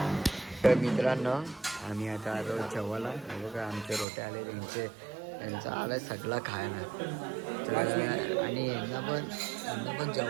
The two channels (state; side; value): drops out; left; at 4.0 s